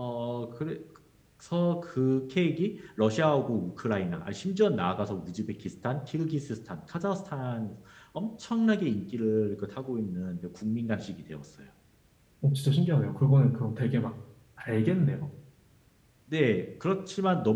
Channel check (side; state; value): both; identical; correlation 1.00